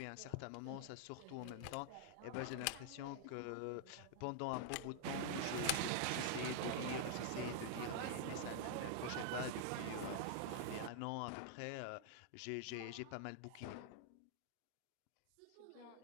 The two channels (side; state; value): both; different; correlation -0.01